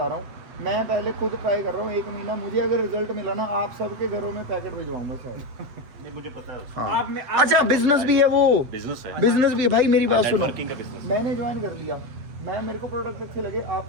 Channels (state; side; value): late; left; 8.0 ms